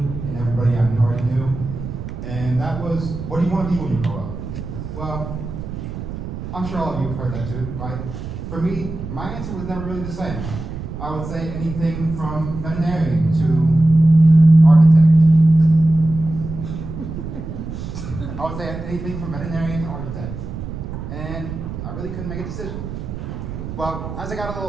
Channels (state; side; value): noise; right; rumble, 8 dB below the sound